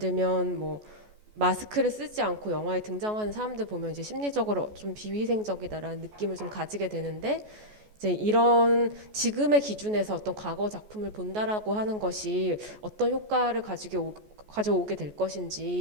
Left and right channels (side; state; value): left; late; 14 ms